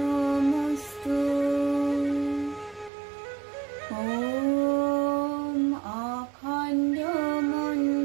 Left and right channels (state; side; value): drops out; left; at 2.9 s